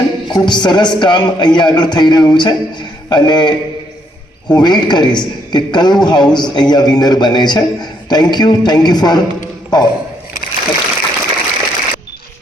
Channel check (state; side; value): normal; both; correlation 0.72